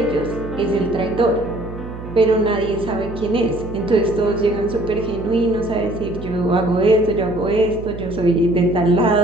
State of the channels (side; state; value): right; noise; hum, 11 dB below the sound